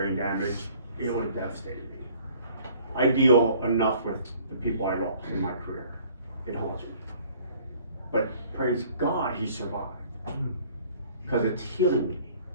damage, it would have devastated me. I deal enough with the people I lost in my career. It haunts me. But praise God, he survived. Because it's healing me.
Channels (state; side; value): inverted; both; correlation -0.54